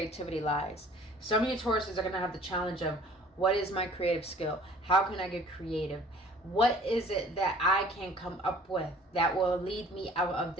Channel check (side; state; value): both; normal; correlation 0.51